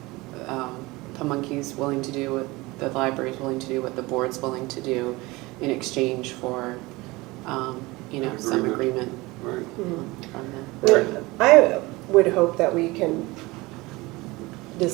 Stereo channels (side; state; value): left; quieter; 22.0 dB